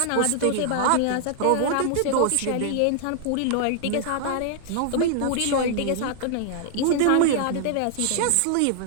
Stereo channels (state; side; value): different; both; correlation 0.00